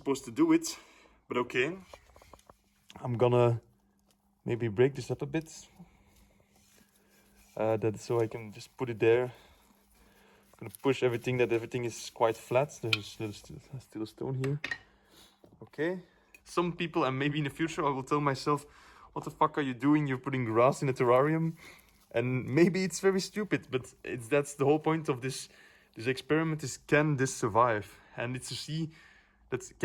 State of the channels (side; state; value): both; identical; correlation 1.00